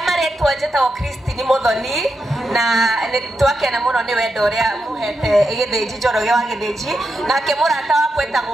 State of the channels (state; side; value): normal; both; correlation 0.86